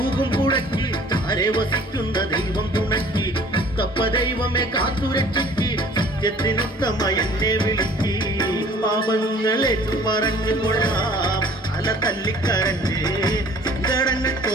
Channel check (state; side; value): normal; both; correlation 0.52